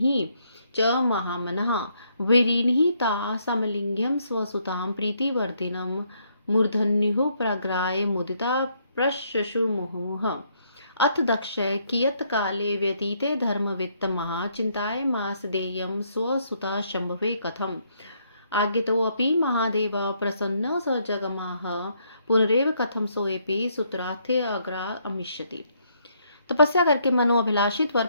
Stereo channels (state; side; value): inverted; both; correlation -0.72